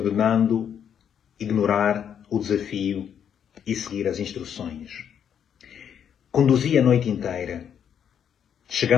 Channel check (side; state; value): right; quieter; 8.5 dB